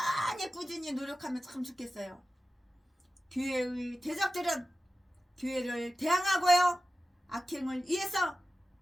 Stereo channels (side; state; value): both; normal; correlation 0.94